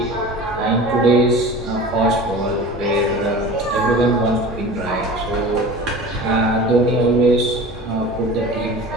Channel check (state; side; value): normal; both; correlation 0.37